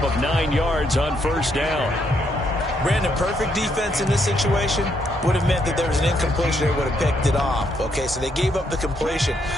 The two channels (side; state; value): both; normal; correlation 0.75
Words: of 9 yards on first down. Brandon, perfect defense in this situation would have meant that there was an incompletion. They would have picked it off. Okay, so they gave up the completion.